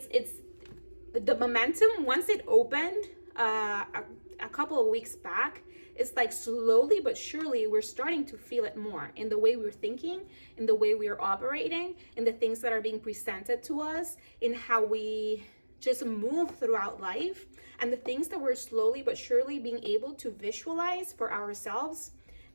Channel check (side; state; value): both; inverted; correlation -1.00